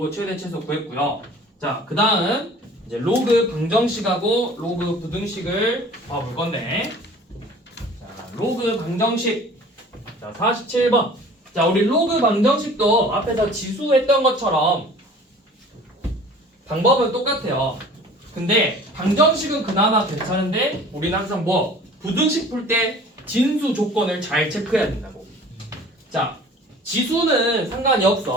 최대 최소 구했고요. 자, 그 다음 이제 로그 방정식하고 로그 부등식을 봐볼 건데, 자, 로그 방정식. 자, 47번. 자, 우리 로그 방정식도 앞에서 지수했던 것처럼 방법은 똑같아요. 근데 방정식은 그나마 괜찮은데 우리는 항상 뭐 부등식 풀 때 진수 조건을 잘 체크해야 된다고. 자, 지수는 상관이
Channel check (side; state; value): both; normal; correlation 0.47